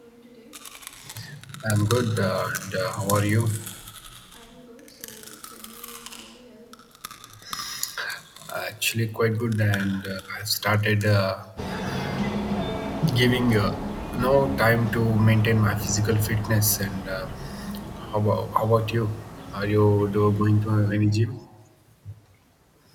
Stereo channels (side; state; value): both; identical; correlation 1.00